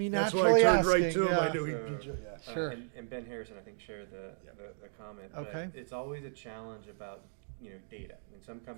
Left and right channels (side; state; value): left; silent; digital silence